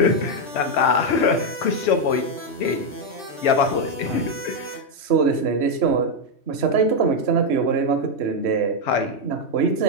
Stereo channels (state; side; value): late; right; 3.1 ms